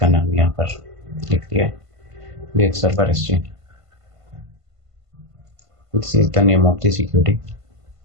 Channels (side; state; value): left; late; 1.5 ms